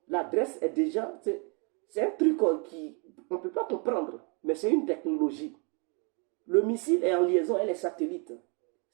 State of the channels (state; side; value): quieter; left; 35.0 dB